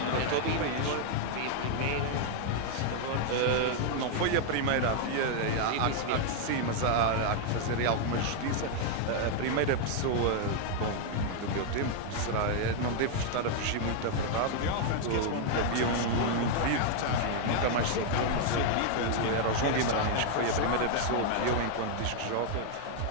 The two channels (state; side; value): different; both; correlation 0.00